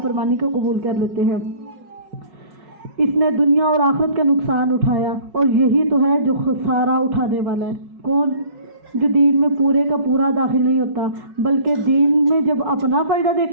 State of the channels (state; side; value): late; left; 5.4 ms